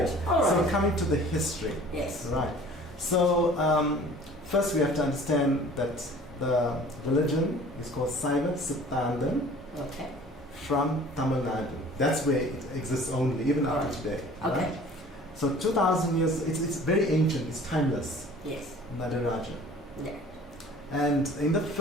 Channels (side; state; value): both; normal; correlation 0.48